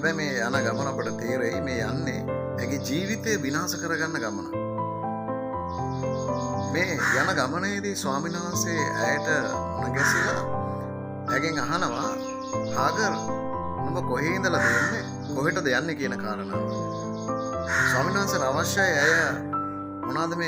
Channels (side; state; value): both; identical; correlation 1.00